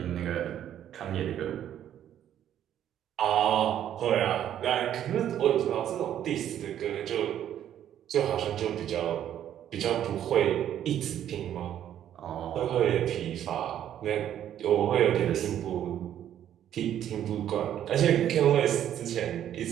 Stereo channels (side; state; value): left; quieter; 10.7 dB